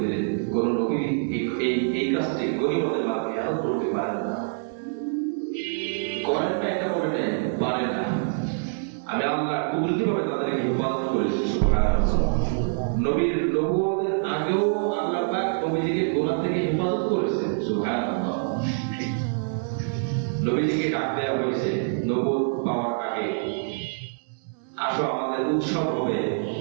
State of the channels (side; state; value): left; silent; 61 dB below the other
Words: দিলেন, কোন নবী এই কাজটি গনিমতের মাধ্যমে খেয়াল করতে পারে না, করেন না, এটা বলে নেয়, পারে না। আমি আল্লাহ কুদরতি ভাবে তাদেরকে হেফাজত করেছি। সুবহানাল্লাহ। নবীর নবুয়তের আগেও আল্লাহ পাক নবীজিকে গুনাহ থেকে হেফাজত করেছেন। সুবহানাল্লাহ। নবীজিকে ডাক দেওয়া হয়েছে নবুয়ত পাওয়ার আগে, আসো আমাদের উৎসব হবে,